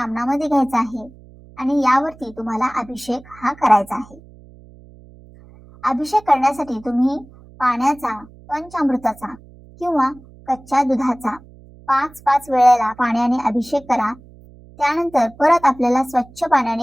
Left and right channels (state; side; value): noise; right; hum, 23 dB below the sound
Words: घ्यायचा आहे आणि यावरती तुम्हाला अभिषेक हा करायचा आहे. अभिषेक करण्यासाठी तुम्ही पाण्याचा, पंचामृताचा किंवा कच्च्या दुधाचा 5-5 वेळेला पाण्याने अभिषेक करा. त्यानंतर परत आपल्याला स्वच्छ